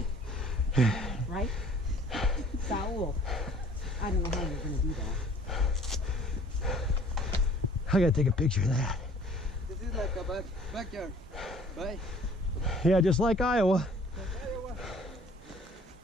Right? Saul, I don't know how you're going to do that. I gotta take a picture of that. This is like a backyard, right? Yeah, just like Iowa.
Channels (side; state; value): both; normal; correlation 0.54